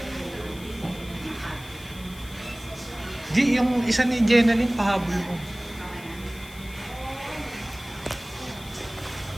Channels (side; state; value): left; noise; hiss, 19 dB below the sound